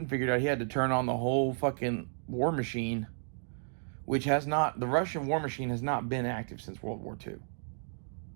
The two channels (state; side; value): silent; left; digital silence